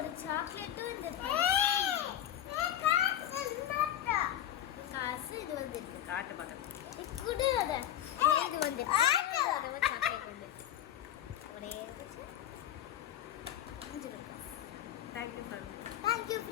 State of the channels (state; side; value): quieter; right; 11.6 dB